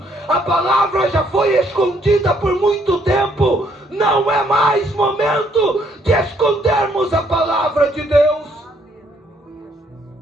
A palavra já foi escondida por muito tempo. Não é mais momento de escondermos a palavra de Deus.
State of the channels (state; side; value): normal; both; correlation 0.68